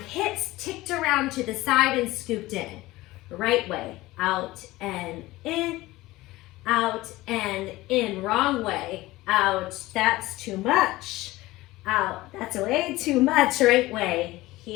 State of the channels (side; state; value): right; quieter; 18.6 dB